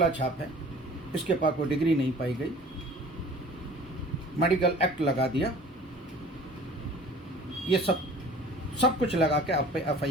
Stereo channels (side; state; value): both; normal; correlation 0.46